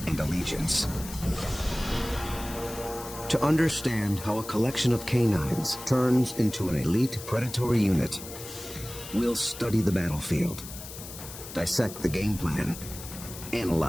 and allegiance. To understand how a collection of canines turns into an elite predatory unit, we'll study the battlefield, dissect the game plan,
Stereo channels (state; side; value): noise; left; hiss, 12 dB below the sound